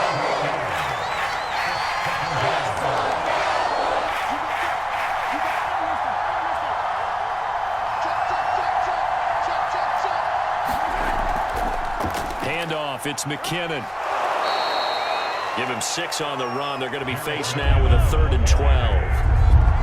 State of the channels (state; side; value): identical; both; correlation 1.00